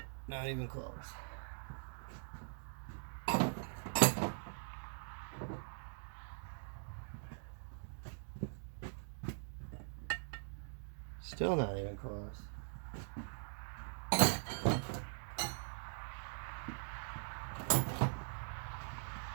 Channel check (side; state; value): left; silent; digital silence